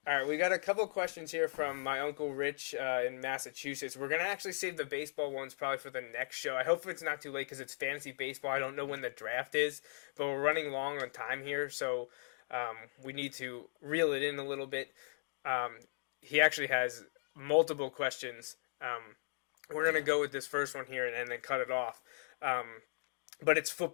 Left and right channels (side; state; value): right; silent; digital silence